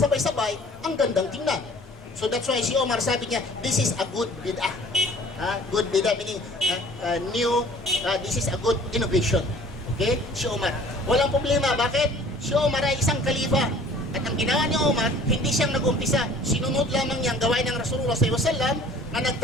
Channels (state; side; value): normal; both; correlation 0.51